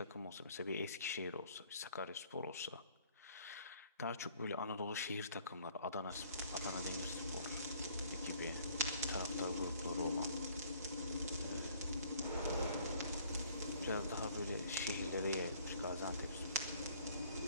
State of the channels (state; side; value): inverted; both; correlation -0.58